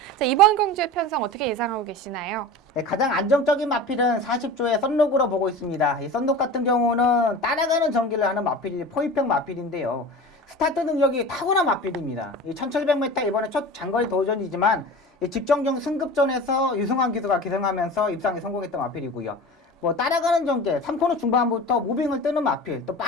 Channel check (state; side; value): normal; both; correlation 0.34